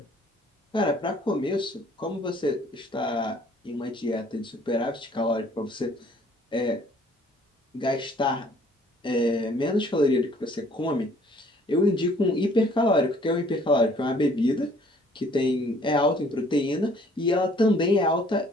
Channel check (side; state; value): both; normal; correlation 0.58